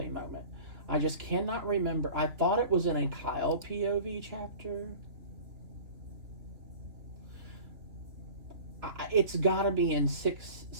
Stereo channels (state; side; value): late; left; 3.2 ms